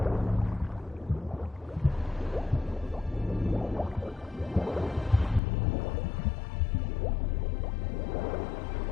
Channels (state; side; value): drops out; right; at 5.4 s